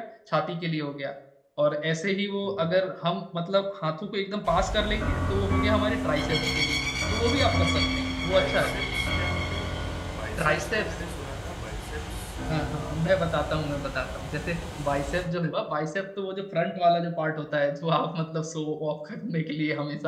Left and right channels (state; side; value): identical; both; correlation 1.00